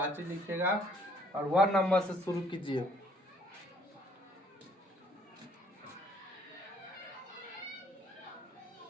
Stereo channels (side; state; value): both; normal; correlation 0.63